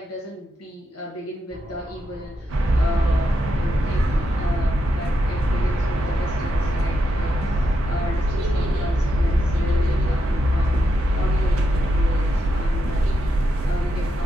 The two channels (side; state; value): both; normal; correlation 0.84